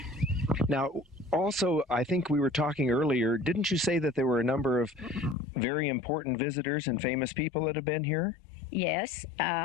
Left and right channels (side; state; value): right; drops out; at 5.4 s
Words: Now, also, I think we were talking earlier, didn't you say that there were a number of very important visitors and famous people that have been here? Yes,